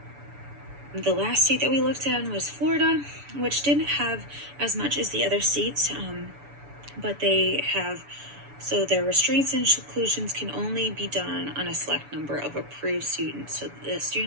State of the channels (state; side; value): late; left; 7.0 ms